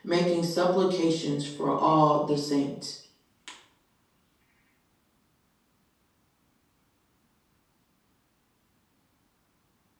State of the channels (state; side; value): identical; both; correlation 1.00